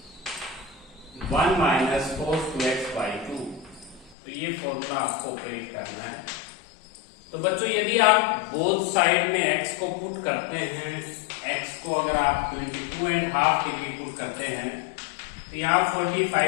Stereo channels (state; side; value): drops out; right; at 4.2 s